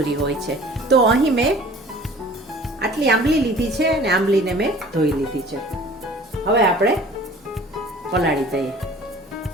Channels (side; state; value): both; normal; correlation 0.47